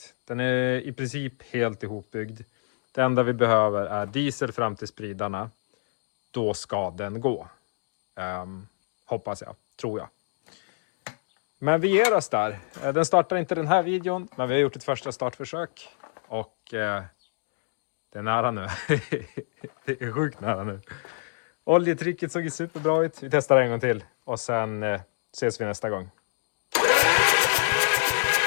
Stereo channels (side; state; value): right; silent; digital silence